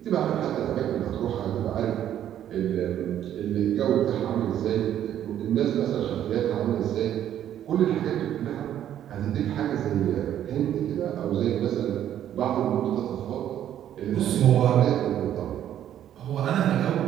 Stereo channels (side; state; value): left; quieter; 10.9 dB